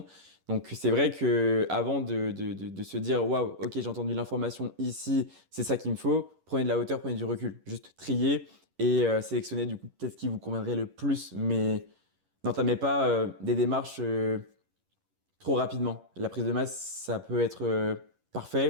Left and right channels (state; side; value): late; left; 11 ms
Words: Donc, c'est vrai que avant de se dire, waouh, ok, j'ai entendu l'information ici, c'est ça qu'il me faut, prenez de la hauteur, prenez du recul. Juste trier et sélectionner du coup peut-être ce qui vous conviendrait le plus, mais n'entamez pas des démarches. Trop rapidement. La prise de masse, ça peut être